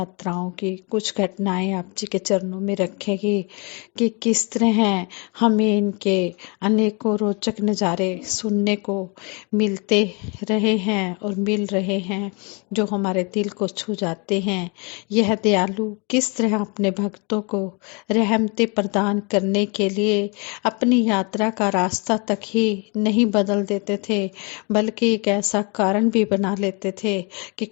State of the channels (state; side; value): quieter; right; 31.7 dB